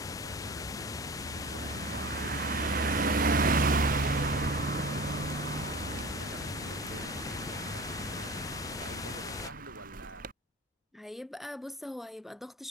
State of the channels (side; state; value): both; normal; correlation 0.36